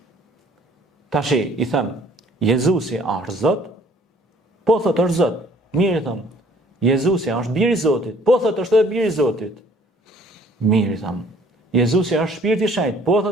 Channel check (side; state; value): both; normal; correlation 0.57